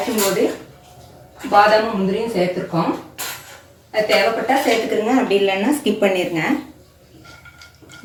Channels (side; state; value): both; identical; correlation 1.00